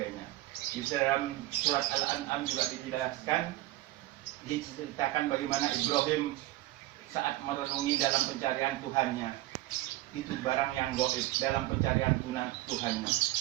Di dalam surat Al-An'am juga diceritakan bagaimana Ibrahim saat merenungi dalam pencarian Tuhannya, itu barang yang gaib dalam pencarian Tuhannya.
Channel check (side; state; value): left; quieter; 17.2 dB